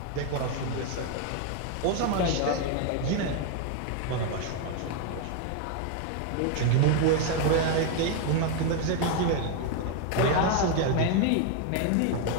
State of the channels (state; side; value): different; both; correlation 0.01